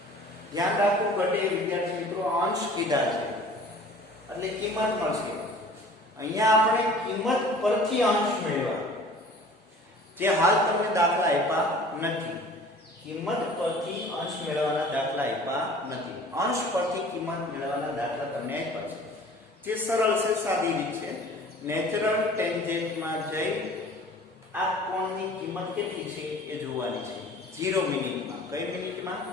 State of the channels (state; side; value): normal; both; correlation 0.47